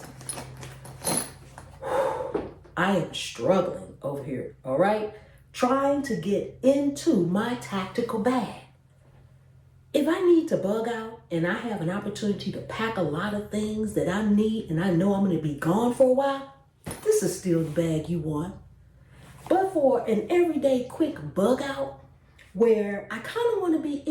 I am struggling over here, all right? Trying to get into my tactical bag. If I need to bug out and I have an opportunity to pack a lot of things that I need and I know I'm going to be gone for a while, this is still the bag you want. But for an everyday quick bug out where I kind of want to be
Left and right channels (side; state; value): both; identical; correlation 1.00